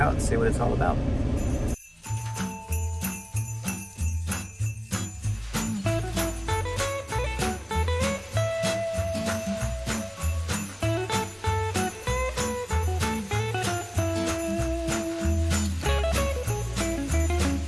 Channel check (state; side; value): identical; both; correlation 1.00